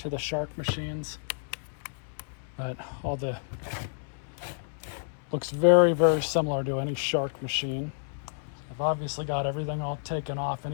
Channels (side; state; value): right; silent; 58 dB below the other